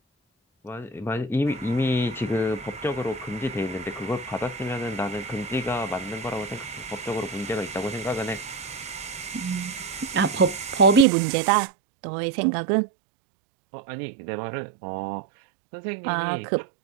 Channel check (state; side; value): drops out; left; at 11.1 s